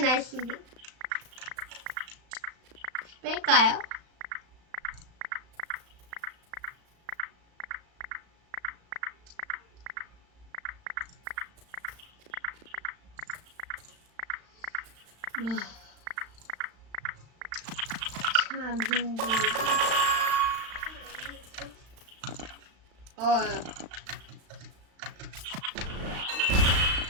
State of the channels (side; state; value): left; late; 35 ms